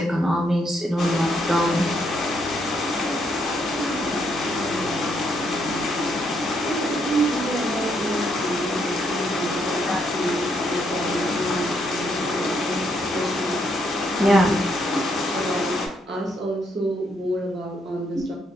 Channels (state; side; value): normal; both; correlation 0.74